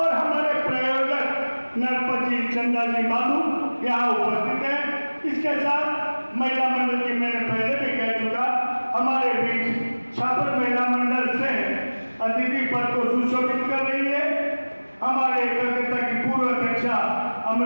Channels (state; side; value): inverted; both; correlation -1.00